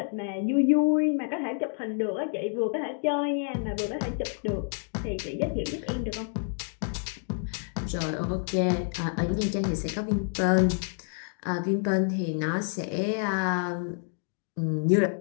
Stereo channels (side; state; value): right; silent; 59 dB below the other